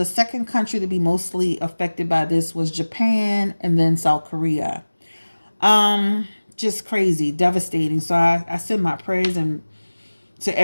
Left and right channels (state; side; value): inverted; both; correlation -1.00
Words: second country to be mostly affected by this was Japan and then South Korea. Just crazy, devastating. So I send my prayers and to